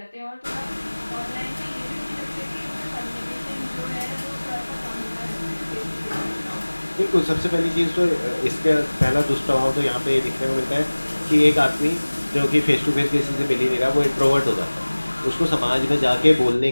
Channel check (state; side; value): inverted; both; correlation -1.00